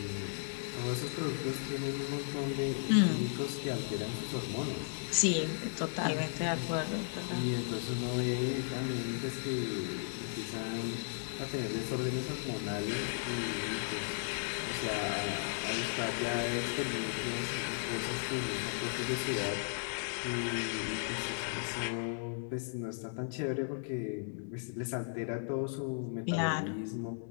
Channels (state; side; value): silent; right; digital silence